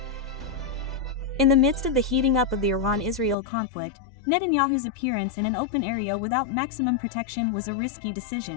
In the midst of the heating up of the Iran-Israel conflict, Netanyahu's appearance in an open area without maximum protection was a risky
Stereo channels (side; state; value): right; drops out; at 3.4 s